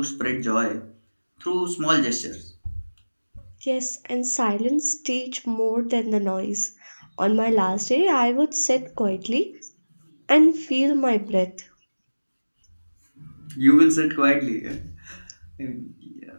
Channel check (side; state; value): both; inverted; correlation -1.00